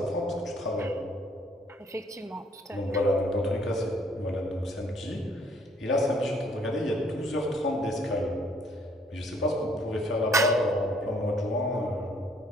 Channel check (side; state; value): both; normal; correlation 0.63